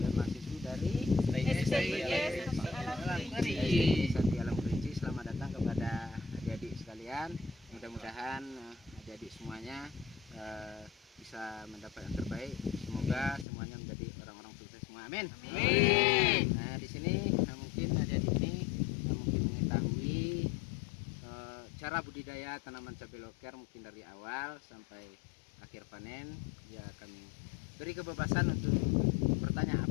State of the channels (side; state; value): right; drops out; at 13.5 s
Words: mahasiswi dari Sati Alam Kerinci. Selamat datang kepada adik-adik sekalian. Mudah-mudahan adik-adik semuanya bisa mendapat yang terbaik. Semoga semuanya menjadi orang-orang sukses semua. Amin. Amin. Nah, di sini mungkin adik-adik ini mungkin mengetahui cara budidaya tanaman cabai loker mungkin dari awal sampai akhir panen. Ya, kami beri kebebasan untuk bertanya